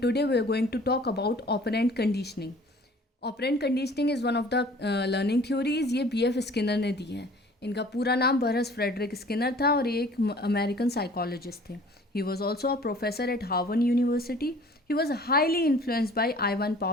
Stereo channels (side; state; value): both; normal; correlation 0.50